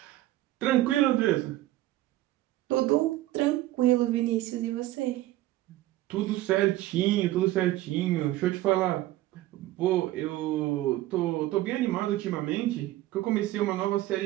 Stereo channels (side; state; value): left; quieter; 15.9 dB